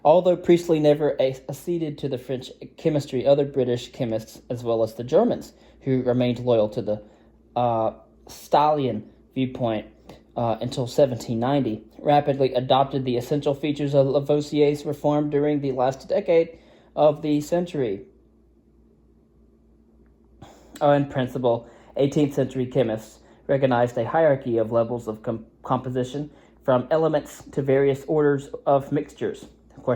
Although Priestley never acceded to the French chemistry, other British chemists, as well as the Germans, who remained loyal to the Stahlian viewpoint until 1790, rapidly adopted the essential features of Lavoisier's reform during the last decade of the century. In principle, 18th century chemists recognized a hierarchy of levels of composition, from elements to various orders of mixtures. Of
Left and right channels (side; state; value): both; identical; correlation 1.00